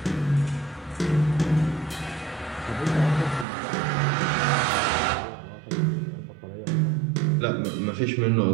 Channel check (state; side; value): drops out; left; at 3.5 s